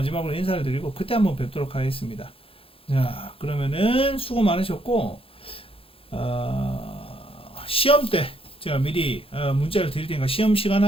인사를 드리고 그때 한번 뵙도록 하겠습니다. 자, 그러면은 수고 많으셨고 시험 때 제가 미리 문자를 드릴 테니까 시험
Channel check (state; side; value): late; right; 0.27 ms